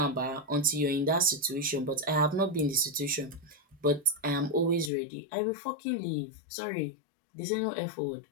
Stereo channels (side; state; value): right; drops out; at 4.9 s